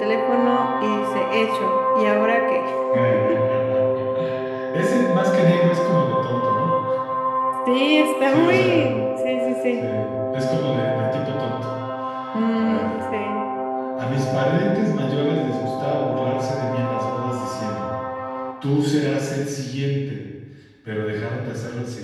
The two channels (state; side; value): identical; both; correlation 1.00